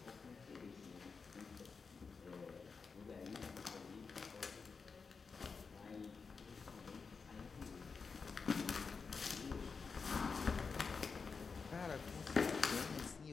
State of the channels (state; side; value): quieter; right; 5.1 dB